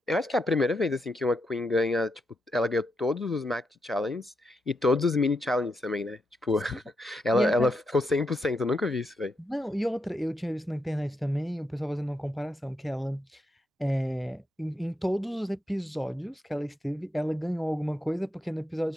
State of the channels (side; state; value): both; normal; correlation 0.82